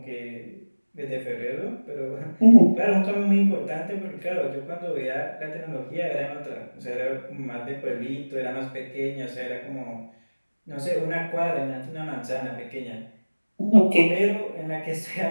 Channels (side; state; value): both; inverted; correlation -1.00